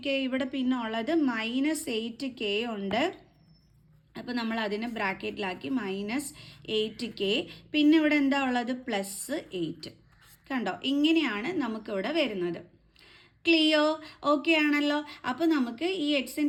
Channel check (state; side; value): identical; both; correlation 1.00